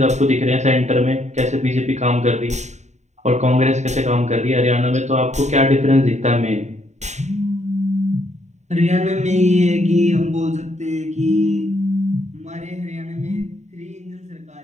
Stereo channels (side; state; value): left; late; 0.34 ms